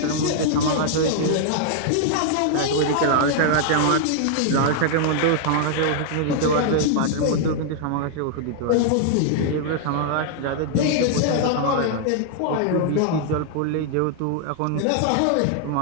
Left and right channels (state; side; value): different; both; correlation 0.00